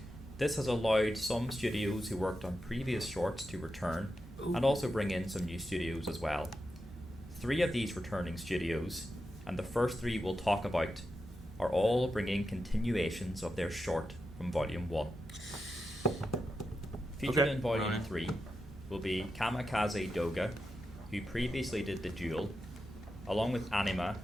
this has allowed some studios who worked on previous shorts to return and also bring in some new studios as well. 3 of these returning studios, and the first 3 we'll talk about, are all bringing continuations of their short from Volume 1. Featured in Volume 3 will be Kamikaze Doga, who previously did The Duel, along with Anima,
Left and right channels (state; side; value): normal; both; correlation 0.88